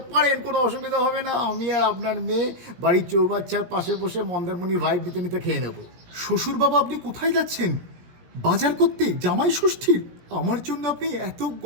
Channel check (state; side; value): late; left; 17 ms